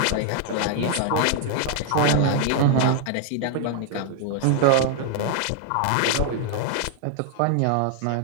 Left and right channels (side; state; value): both; different; correlation 0.00